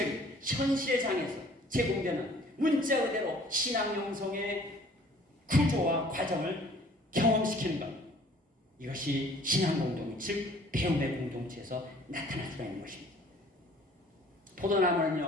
현실의 장에서 제공되는 문자 그대로 신앙 형성의 구조와 과정을 경험시키는 것. 이것이 신앙 공동, 즉 배움의 공동체에서 나타날 수가 있는 것입니다.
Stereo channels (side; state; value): both; normal; correlation 0.54